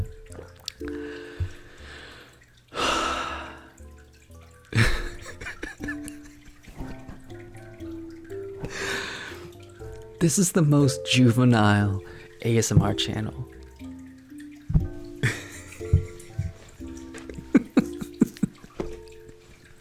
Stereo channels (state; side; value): identical; both; correlation 1.00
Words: This is the most juvenile ASMR channel.